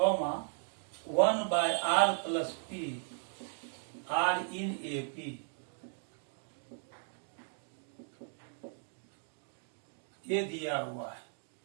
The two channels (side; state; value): left; silent; 54 dB below the other